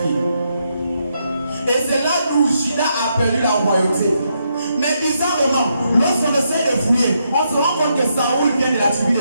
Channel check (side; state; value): both; inverted; correlation -0.79